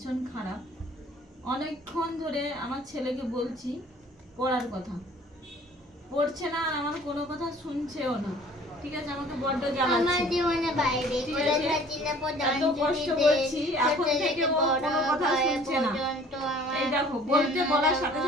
খারাপ। অনেকক্ষণ ধরে আমার ছেলেকে বলছি পড়ার কথা, পড়ছে না, আর আমার কোনো কথা শুনছেও না। ঠিক আছে, আমাকে বড্ড জ্বালাচ্ছে। এত কষ্ট করছি, এখন থেকে ও কোনো কথা শুনছে না। এই দেখো, বলার সাথে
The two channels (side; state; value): both; normal; correlation 0.51